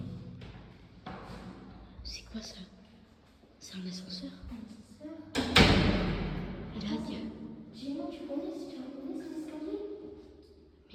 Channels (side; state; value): both; identical; correlation 1.00